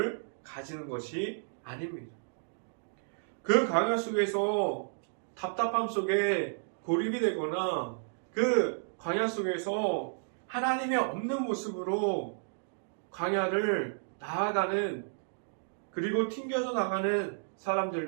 가지는 것이 아닙니다. 그 광야 속에서 답답함 속에 고립이 되거나 그 광야 속에서 하나님의 없는 모습으로 광야를 나아가는 그리고 튕겨져 나가는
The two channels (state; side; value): silent; left; digital silence